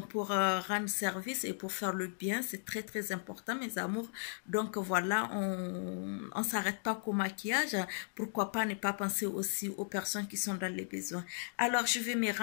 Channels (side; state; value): right; silent; digital silence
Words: rendre service et pour faire le bien, c'est très important mes amours. Donc voilà, on s'arrête pas qu'au maquillage, pourquoi pas ne pas penser aussi aux personnes qui sont dans les besoins. Alors je vais me